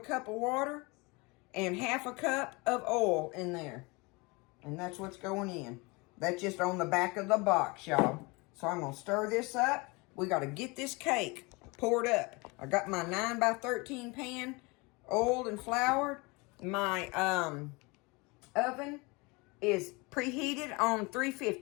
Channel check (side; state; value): right; quieter; 26.6 dB